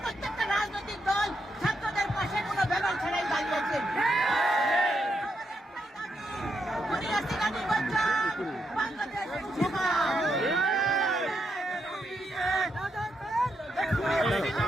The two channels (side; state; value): both; normal; correlation 0.81